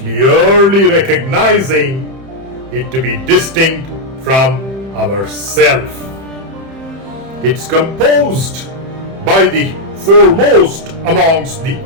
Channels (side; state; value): left; late; 31 ms